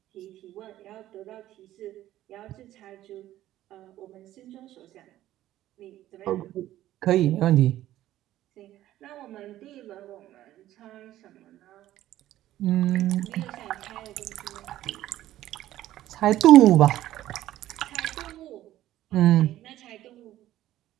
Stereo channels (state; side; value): quieter; left; 13.9 dB